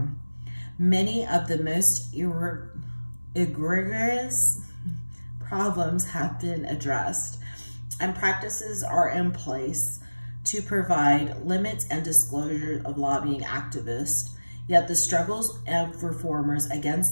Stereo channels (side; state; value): both; inverted; correlation -1.00